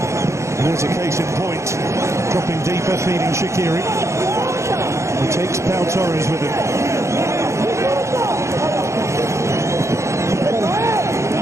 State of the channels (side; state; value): left; late; 0.14 ms